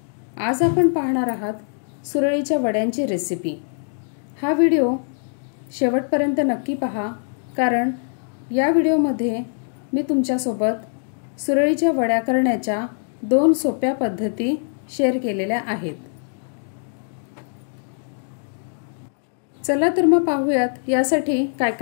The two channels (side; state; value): right; silent; digital silence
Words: आज आपण पाहणार आहात सुरळीच्या वड्यांची रेसिपी। हा व्हिडिओ शेवटपर्यंत नक्की पहा, कारण या व्हिडिओमध्ये मी तुमच्यासोबत सुरळीच्या वड्या करण्याच्या 2 सोप्या पद्धती शेअर केलेल्या आहेत। चला तर मग पाहूयात यासाठी काय